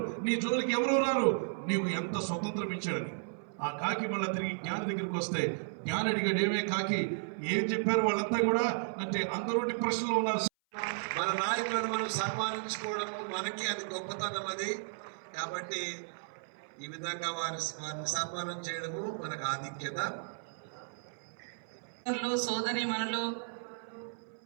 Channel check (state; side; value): silent; left; 55 dB below the other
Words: నీ జోలికి ఎవరు రారు, నీవు ఎంత స్వతంత్రం ఇచ్చాడని. ఆ కాకి మళ్ళీ తిరిగి జ్ఞాని దగ్గరికి వస్తే జ్ఞాని అడిగాడు, ఏమే కాకి ఏం చెప్పారు వాళ్ళంతా కూడా అంటే అందరూ డిప్రెషన్లో ఉన్నారు. మన నాయకులను మనం సన్మానించుకోవడము మనకి అది గొప్పతనం. అది కాబట్టి ఈ విధంగా వారిని సన్మానం చేయడము మనకు ఆధిక్యత. సోదరి మనలో